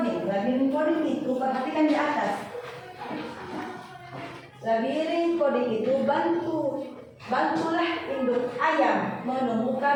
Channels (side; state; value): both; identical; correlation 1.00